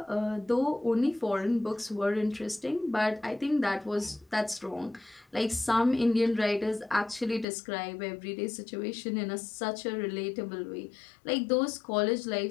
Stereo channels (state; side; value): drops out; right; at 7.5 s